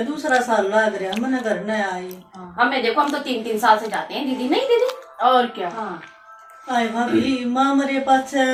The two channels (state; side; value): identical; both; correlation 1.00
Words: दूसरा साल लग रहा मैंने घर न आई। हाँ, हमें देखो, हम तो 3-3 साल से जाते हैं दीदी। नहीं दीदी और क्या, हाँ आए भाभी माँ मेरे पास